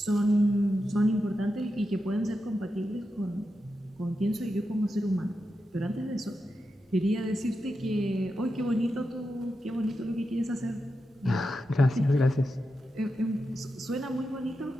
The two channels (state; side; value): normal; both; correlation 0.88